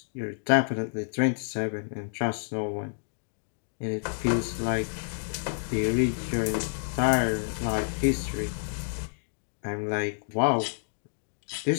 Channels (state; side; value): silent; right; digital silence